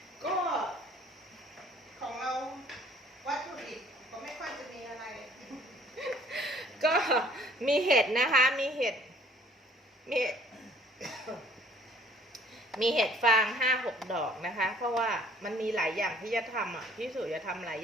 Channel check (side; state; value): both; normal; correlation 0.55